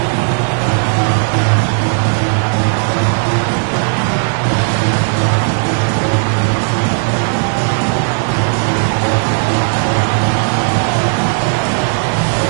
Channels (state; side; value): silent; left; 60 dB below the other